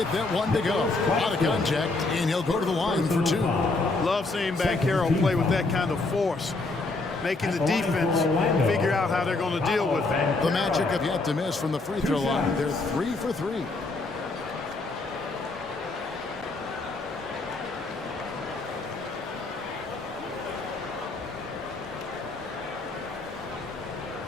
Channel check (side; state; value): right; quieter; 3.4 dB